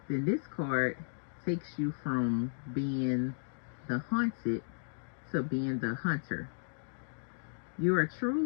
then this card takes you from being the hunted to being the hunter. You are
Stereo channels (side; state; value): right; silent; digital silence